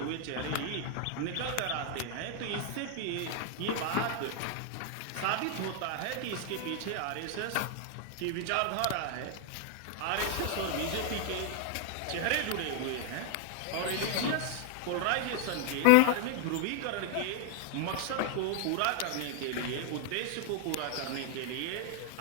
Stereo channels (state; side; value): different; both; correlation 0.00